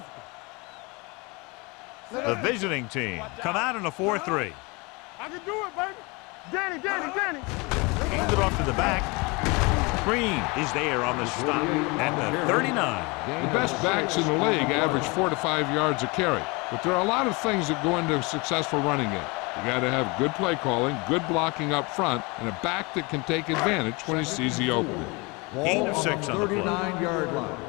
The visiting team come out in a 4-3. I can do it, baby. Danny. Hand it off to the back. Green is there on the stop at the 39. The best backs in the league average 4 to 5 yards a carry, but there are a lot of things that go into a successful running game. You got to have good play calling, good blocking up front, and a back that can take advantage when he sees the opening. Gain of 6 on the play. 39-yard line.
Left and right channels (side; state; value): right; quieter; 27.2 dB